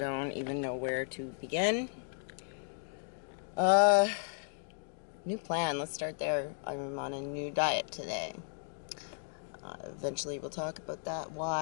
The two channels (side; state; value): right; silent; digital silence